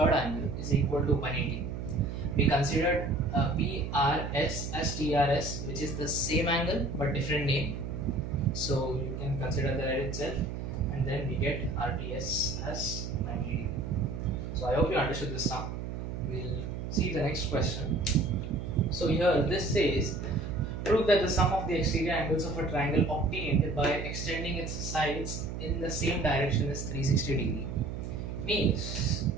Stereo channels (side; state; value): right; noise; hum, 6 dB below the sound